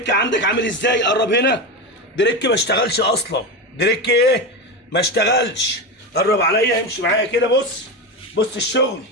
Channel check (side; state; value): both; normal; correlation 0.18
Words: عندك عامل ازاي. قرب هنا. دريك ما اشتغلش اصلا. دريك ايه؟ ما اشتغلش. قرب عليا، امشي معايا كده. بص الشغل.